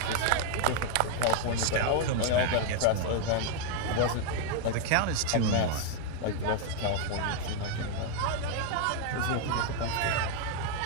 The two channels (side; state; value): both; different; correlation 0.00